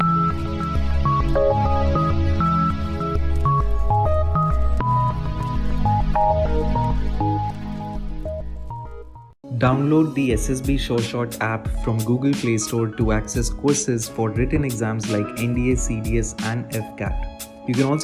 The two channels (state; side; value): identical; both; correlation 1.00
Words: Download the SSB SureShot app from Google Play Store to access courses for written exams like NDA, CDS and FCAT. You can